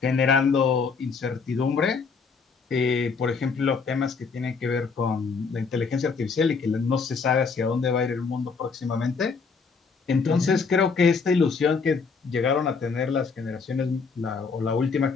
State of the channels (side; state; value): right; quieter; 5.0 dB